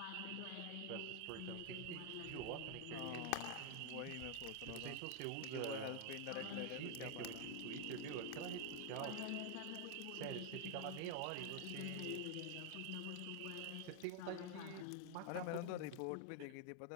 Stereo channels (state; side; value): different; both; correlation 0.00